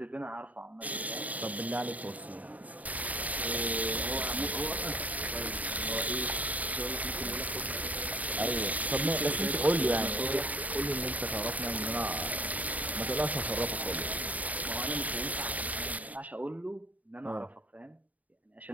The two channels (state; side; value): late; left; 0.073 ms